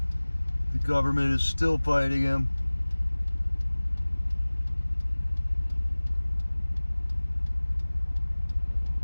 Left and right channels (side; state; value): both; inverted; correlation -1.00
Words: The government is still fighting him.